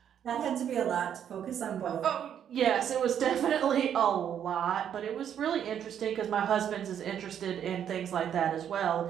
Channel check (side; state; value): left; quieter; 9.2 dB